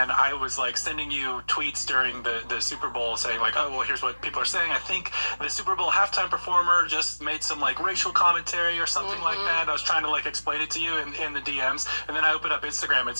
I was, like, sending you tweets during the Super Bowl saying, like, oh, well, here's what people are saying. I think the Super Bowl halftime performer just made some like racial commentary or something like that. I was trying to like explain it to you in the DMs, and then I open up Instagram and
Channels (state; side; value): inverted; both; correlation -1.00